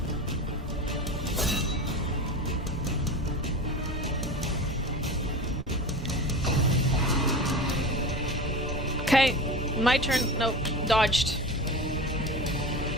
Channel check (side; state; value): both; normal; correlation 0.30